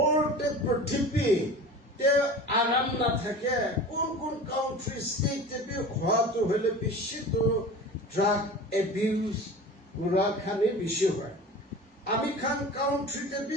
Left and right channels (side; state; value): both; normal; correlation 0.36